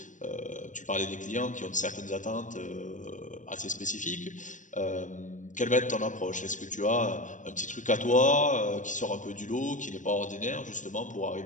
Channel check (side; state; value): right; late; 0.37 ms